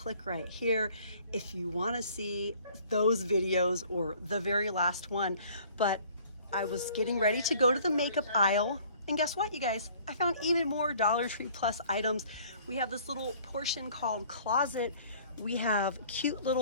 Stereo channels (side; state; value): both; inverted; correlation -0.54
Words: right here if you want to see those videos or the very last one. But I was getting ready to go to the makeup aisle, and guess what, you guys? I found even more Dollar Tree Plus items. We have this little portion called closet. We have cute